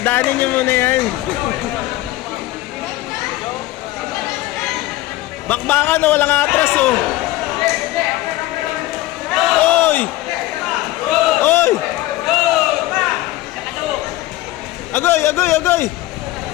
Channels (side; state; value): right; quieter; 16.9 dB